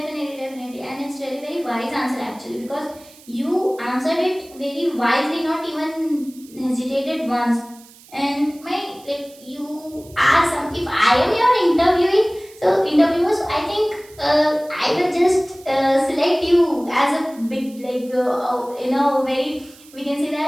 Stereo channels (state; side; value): noise; right; hiss, 23 dB below the sound